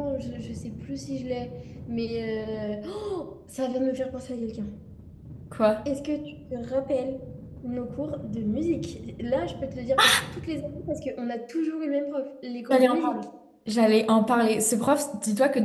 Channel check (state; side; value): identical; both; correlation 1.00